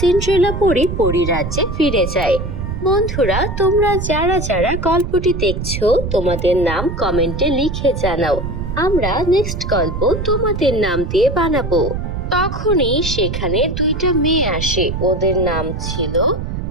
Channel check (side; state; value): right; noise; rumble, 5 dB below the sound